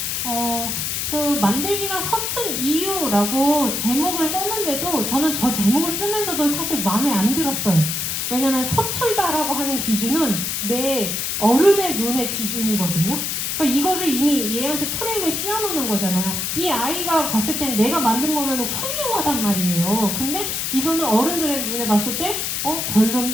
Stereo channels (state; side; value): noise; left; hiss, 1 dB below the sound